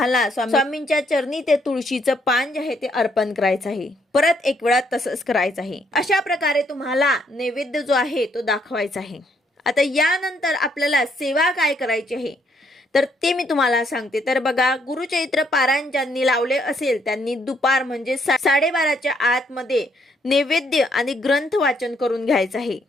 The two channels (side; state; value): both; normal; correlation 0.71